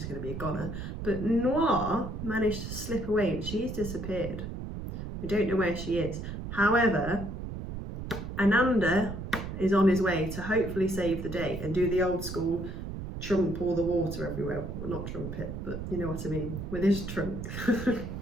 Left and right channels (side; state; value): right; noise; rumble, 7 dB below the sound